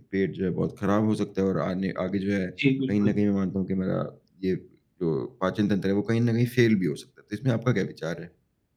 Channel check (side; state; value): both; identical; correlation 1.00